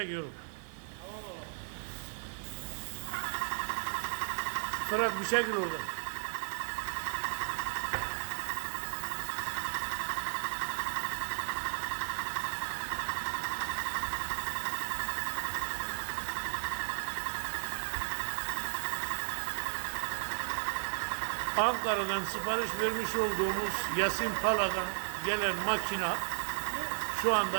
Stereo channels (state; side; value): silent; left; digital silence